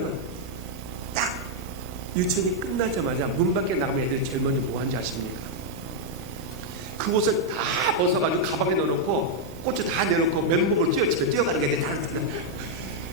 딱 유치원이 끝나자마자 문 밖에 나가면 애들이 제일 먼저 뭐 하는지 아십니까? 그 옷을 다 벗어가지고 가방에 넣어놓고 꽃을 다 내놓고 맨몸으로 집에 뛰어가는 게 애들이 다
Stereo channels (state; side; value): normal; both; correlation -0.02